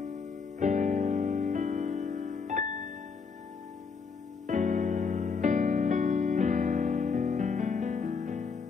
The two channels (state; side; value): quieter; right; 5.3 dB